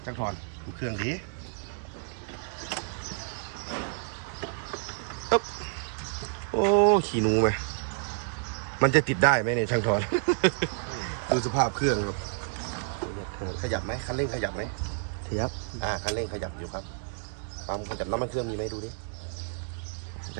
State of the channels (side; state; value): left; silent; digital silence